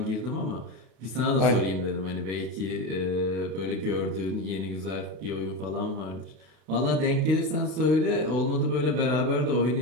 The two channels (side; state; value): left; late; 32 ms